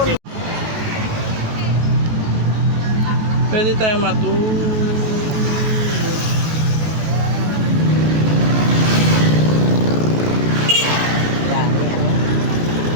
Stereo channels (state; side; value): late; left; 19 ms